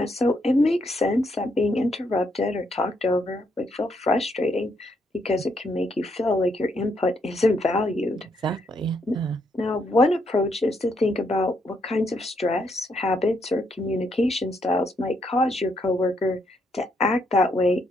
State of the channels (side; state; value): both; normal; correlation 0.76